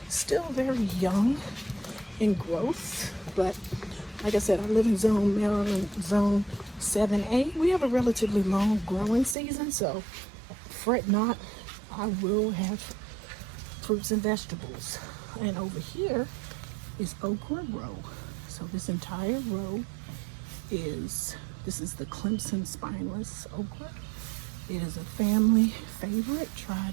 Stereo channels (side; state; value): left; drops out; at 9.3 s